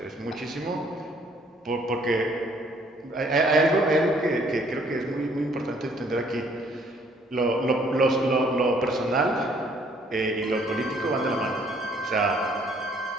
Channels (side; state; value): both; normal; correlation 0.62